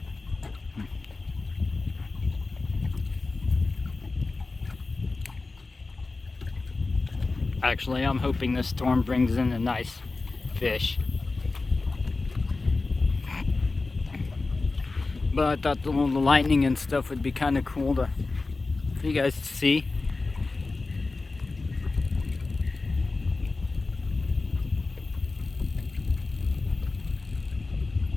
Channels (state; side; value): quieter; right; 3.6 dB